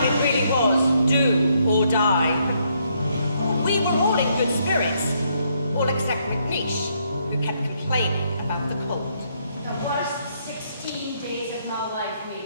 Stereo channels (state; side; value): inverted; both; correlation -0.73